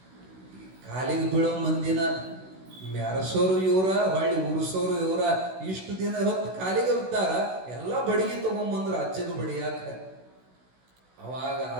ಕಾಲಿಗೆ ಬೀಳೋ ಮಂದಿನ ಮೆರಸೋರು ಇವರ, ಹೊಳ್ಳಿ ಉರ್ಸೋರು ಇವರ. ಇಷ್ಟು ದಿನ ಹೊತ್ತು ಕಾಲಿಗೆ ಬಿದ್ದಾರ, ಎಲ್ಲ ಬಡಿಗೆ ತಗೊಂಬಂದ್ರ ಅಜ್ಜಗ ಬಡಿಯಾಕ. ಅವಾಗ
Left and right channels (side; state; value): left; late; 16 ms